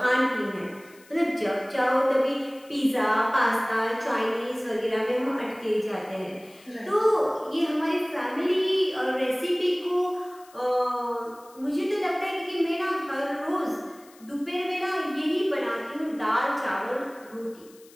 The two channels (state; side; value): noise; left; hiss, 26 dB below the sound